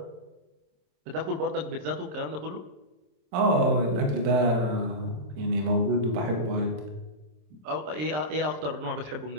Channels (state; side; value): late; left; 26 ms